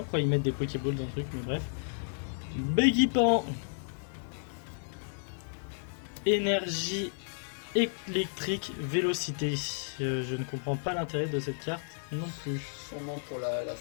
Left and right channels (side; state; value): right; silent; digital silence